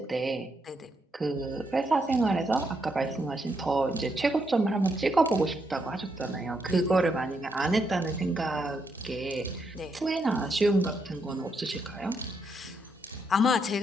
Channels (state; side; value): normal; both; correlation 0.79